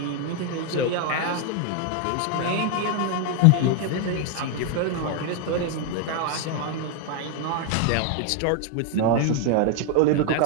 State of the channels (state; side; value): different; both; correlation 0.01